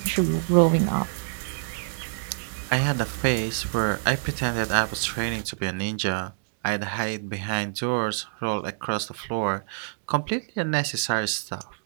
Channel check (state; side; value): silent; left; digital silence